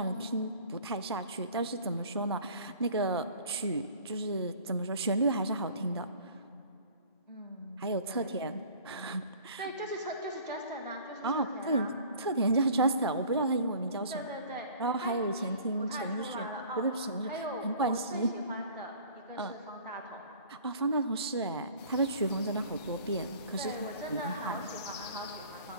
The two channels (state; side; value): inverted; both; correlation -0.48